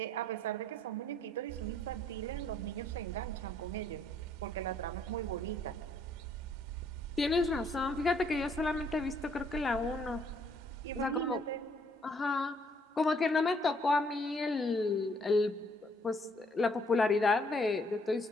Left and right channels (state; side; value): normal; both; correlation 0.66